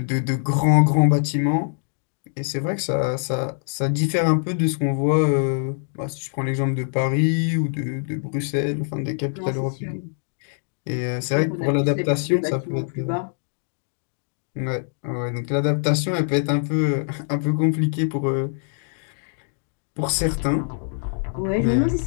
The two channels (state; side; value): silent; right; digital silence